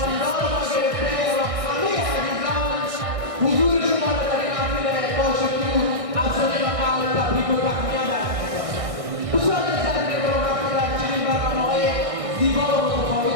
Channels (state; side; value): late; left; 1.6 ms